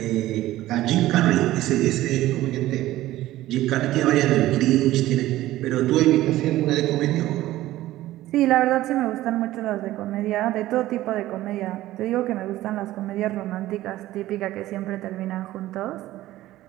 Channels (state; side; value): quieter; left; 15.5 dB